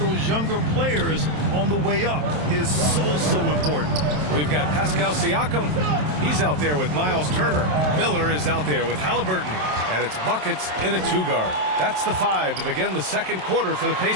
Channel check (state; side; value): late; left; 27 ms